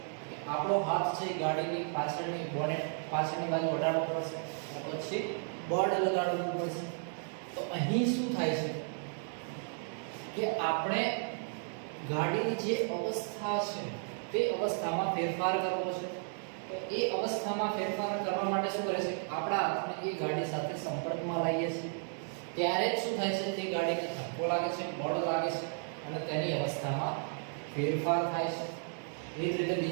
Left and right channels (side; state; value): left; silent; 55 dB below the other